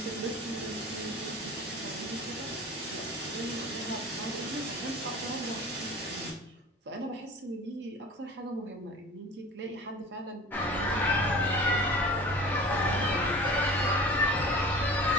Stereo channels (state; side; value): normal; both; correlation 0.40